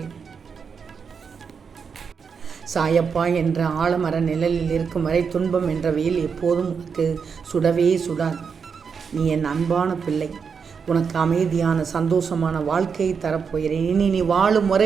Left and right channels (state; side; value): quieter; left; 6.1 dB